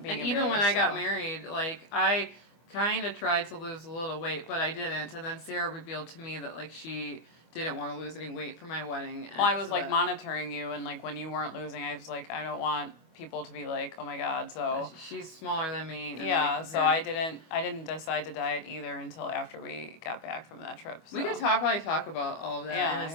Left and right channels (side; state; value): right; late; 25 ms